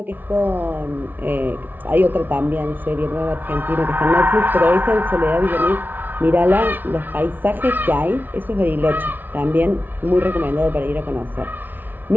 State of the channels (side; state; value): left; late; 0.088 ms